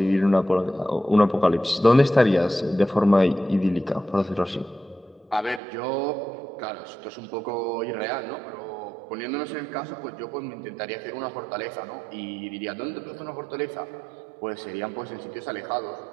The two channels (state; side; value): drops out; left; at 5.6 s